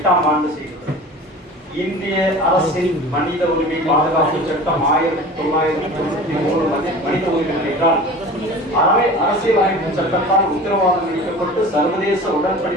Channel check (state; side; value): normal; both; correlation 0.38